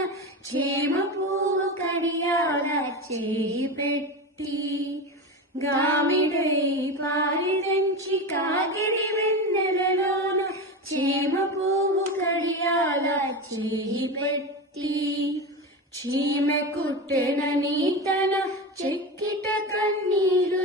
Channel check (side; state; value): both; normal; correlation 0.22